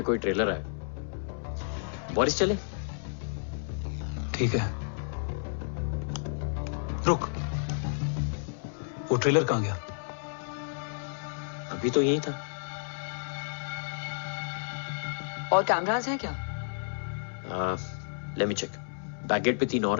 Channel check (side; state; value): right; silent; digital silence